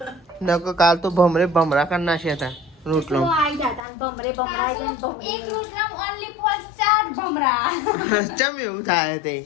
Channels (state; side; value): drops out; right; at 3.8 s